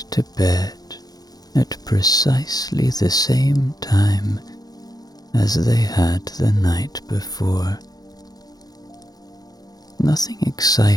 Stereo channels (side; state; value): right; late; 0.19 ms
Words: to bed at precisely the same time as they had the night before. Nothing